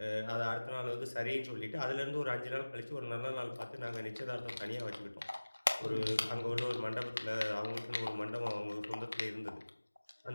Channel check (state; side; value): inverted; both; correlation -1.00